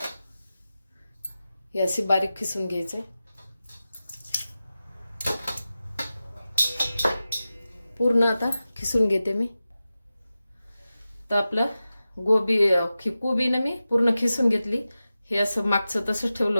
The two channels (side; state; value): both; inverted; correlation -0.94